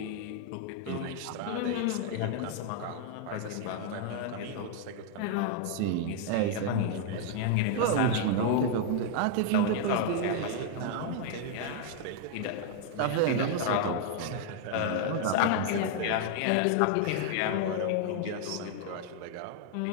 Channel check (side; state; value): both; different; correlation 0.00